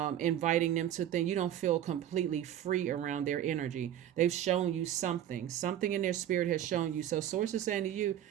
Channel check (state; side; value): quieter; left; 11.2 dB